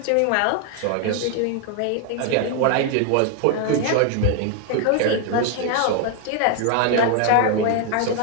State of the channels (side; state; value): both; different; correlation 0.00